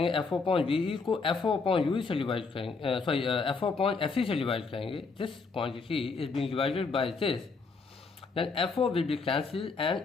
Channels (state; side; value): quieter; right; 4.5 dB